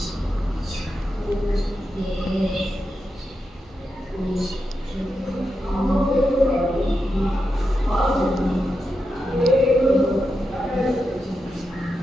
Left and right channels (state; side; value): normal; both; correlation 0.87